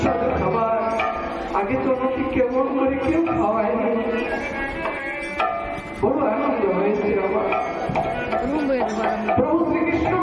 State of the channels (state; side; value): identical; both; correlation 1.00